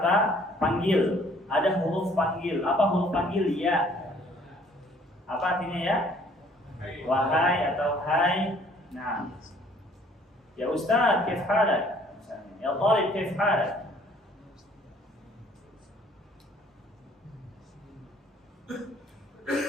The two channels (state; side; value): normal; both; correlation 0.58